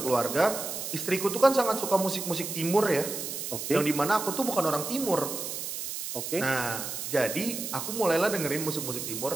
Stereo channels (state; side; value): noise; right; hiss, 5 dB below the sound